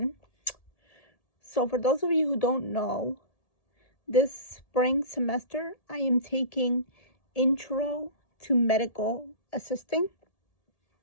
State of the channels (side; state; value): right; late; 1.8 ms